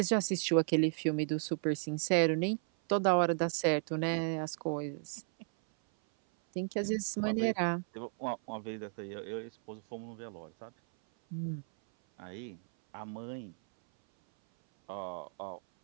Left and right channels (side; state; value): left; silent; 55 dB below the other